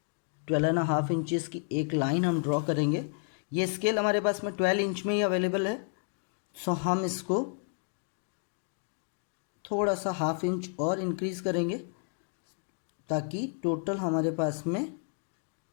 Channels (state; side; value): silent; right; 57 dB below the other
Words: 12.5 इंचेस की एक लाइन हम ड्रॉ करेंगे। ये स्केल हमारे पास में 12 इंच में ही अवेलेबल है। सो हम इसको थोड़ा सा हाफ इंच और इंक्रीज करेंगे ताकि टोटल हमारे पास में